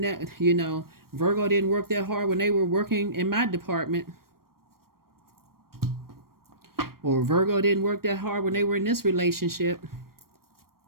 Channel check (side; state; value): left; late; 0.93 ms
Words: that, you know, Virgo didn't work that hard when they were working in my department. Or Virgo didn't work that hard when they were in this relationship.